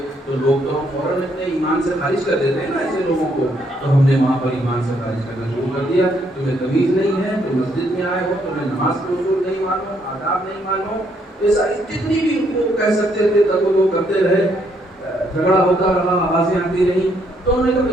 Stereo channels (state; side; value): normal; both; correlation 0.71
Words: تو لوگ تو ہم فوراً اپنے ایمان سے خارج کر دیتے ہیں نا ایسے لوگوں کو، تو ہم نے وہاں پر ایمان سے خارج کرنا شروع کر دیا۔ تمہیں تمیز نہیں ہے، تم مسجد میں آئے ہو، تمہیں نماز کے اصول نہیں معلوم، آداب نہیں معلوم، یہ ساری جتنی بھی ان کو کہہ سکتے تھے تب وہ کرتے رہے، جھگڑا ہوتا رہا، آوازیں آتی رہی۔ تو انہوں نے کہا